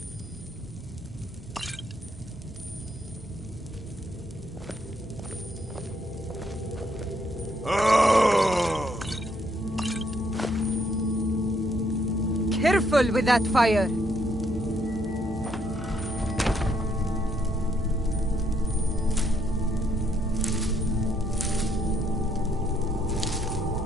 Careful with that fire.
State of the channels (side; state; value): both; normal; correlation 0.71